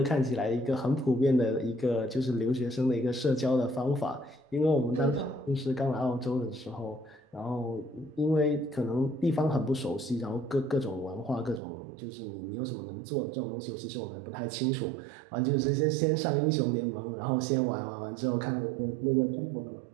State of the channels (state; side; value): drops out; left; at 11.6 s